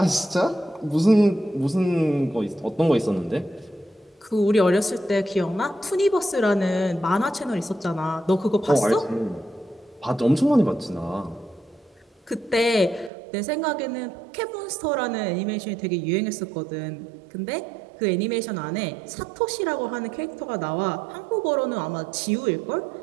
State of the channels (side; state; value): left; drops out; at 13.1 s